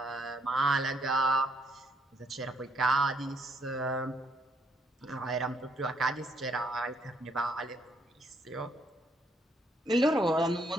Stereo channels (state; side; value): normal; both; correlation 0.71